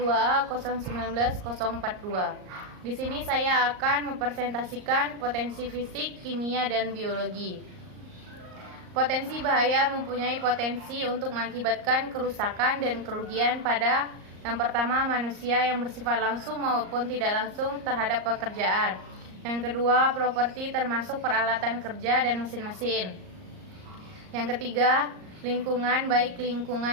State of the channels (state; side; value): late; left; 38 ms